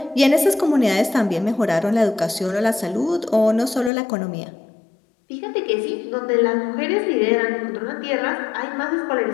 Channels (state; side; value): drops out; right; at 3.9 s